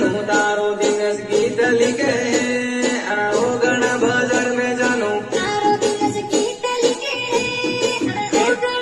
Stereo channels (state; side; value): identical; both; correlation 1.00